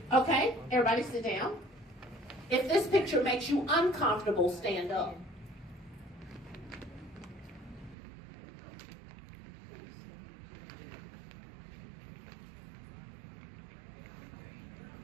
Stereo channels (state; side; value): drops out; left; at 8.0 s